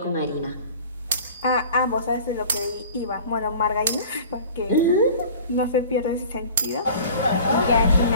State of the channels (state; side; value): inverted; both; correlation -0.43